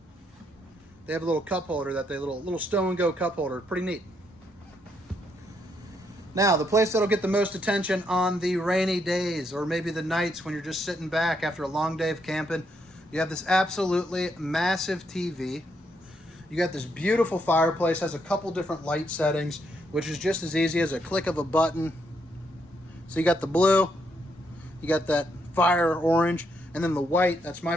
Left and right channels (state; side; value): normal; both; correlation 0.76